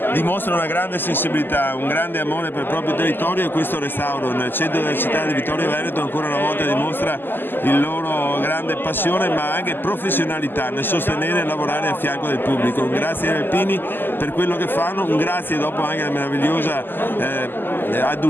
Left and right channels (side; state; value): right; late; 0.094 ms